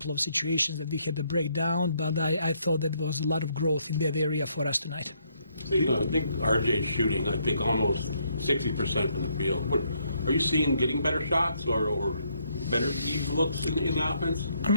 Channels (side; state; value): both; inverted; correlation -0.72